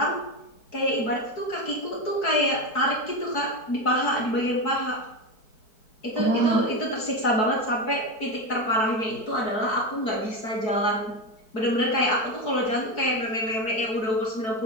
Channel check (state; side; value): late; right; 4.6 ms